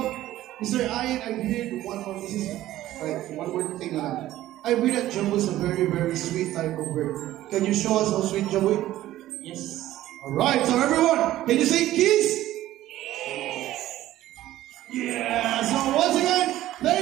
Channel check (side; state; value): left; quieter; 14.5 dB